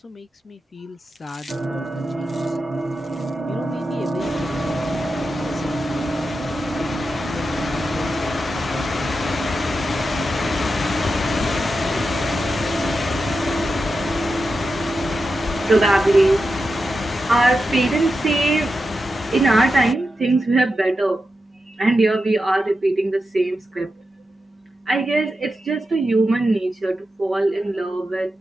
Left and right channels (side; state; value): both; normal; correlation 0.89